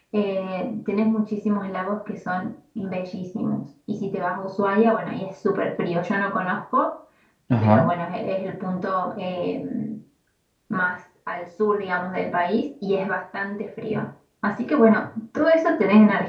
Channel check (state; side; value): identical; both; correlation 1.00